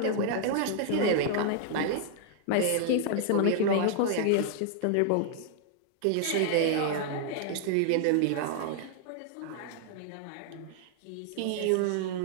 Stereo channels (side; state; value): both; different; correlation 0.00